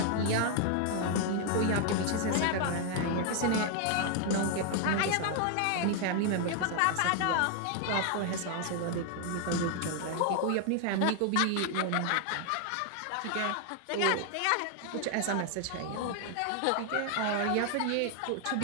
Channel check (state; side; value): different; both; correlation 0.00